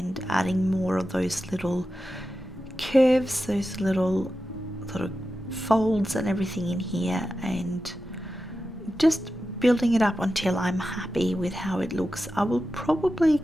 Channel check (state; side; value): normal; both; correlation 0.92